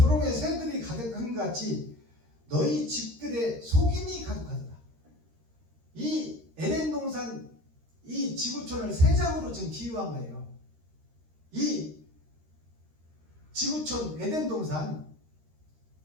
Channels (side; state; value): left; late; 13 ms